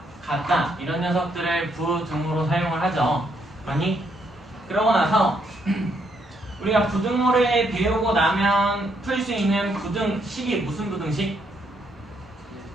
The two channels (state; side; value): normal; both; correlation 0.74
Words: 같다 이런 녀석들을 부등호로 사용을 하죠. 아니? 그러고 나서 우리가 부등호를 배우고 나면 풀 수 있는 부등식이 무슨 부등식?